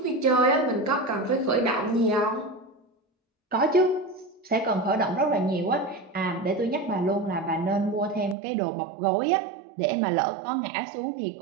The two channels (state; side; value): drops out; left; at 8.3 s